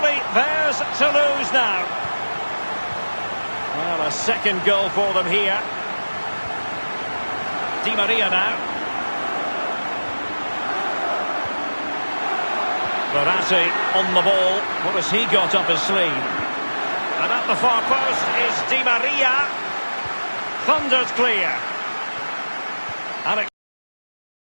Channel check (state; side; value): inverted; both; correlation -1.00